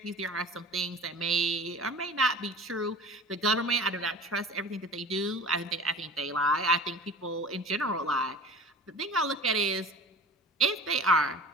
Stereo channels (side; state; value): both; normal; correlation 0.38